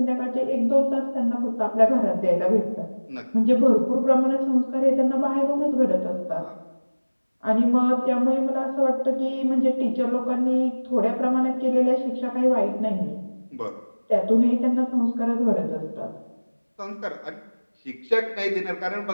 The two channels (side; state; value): both; inverted; correlation -1.00